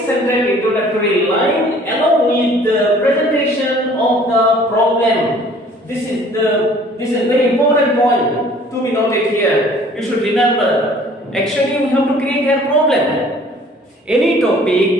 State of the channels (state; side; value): normal; both; correlation 0.53